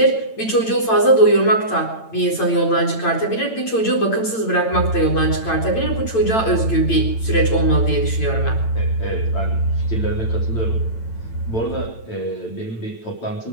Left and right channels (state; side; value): late; right; 8.9 ms